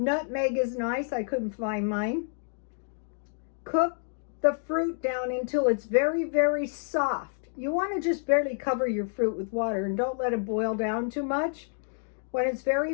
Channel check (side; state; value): right; silent; digital silence